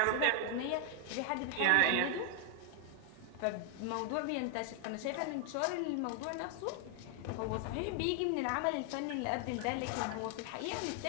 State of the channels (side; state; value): both; different; correlation 0.00